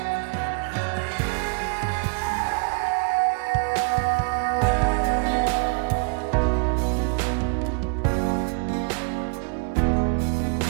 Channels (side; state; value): left; quieter; 36.0 dB